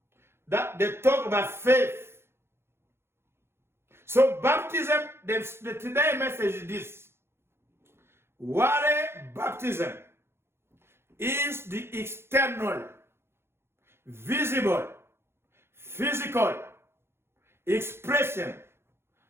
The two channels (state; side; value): late; left; 0.12 ms